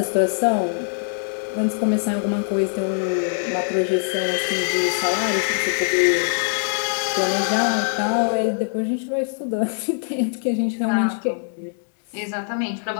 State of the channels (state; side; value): silent; right; digital silence